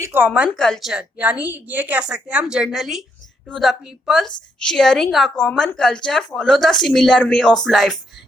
کامن کلچر. یعنی یہ کہہ سکتے ہیں ہم generally to the peoples sharing a common culture follow the similar way of life.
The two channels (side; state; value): both; normal; correlation 0.76